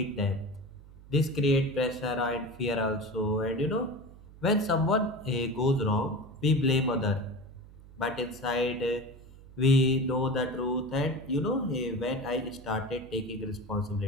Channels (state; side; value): noise; right; hum, 20 dB below the sound